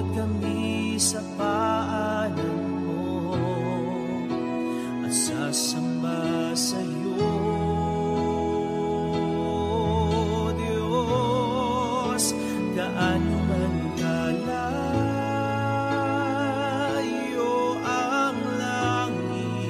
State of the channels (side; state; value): both; identical; correlation 1.00